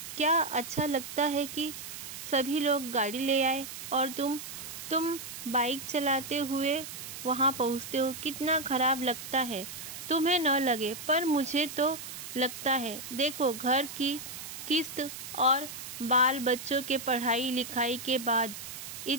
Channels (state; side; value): noise; right; hiss, 10 dB below the sound